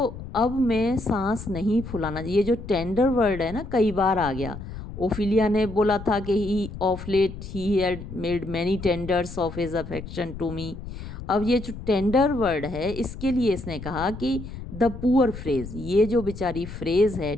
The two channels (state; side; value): noise; left; rumble, 11 dB below the sound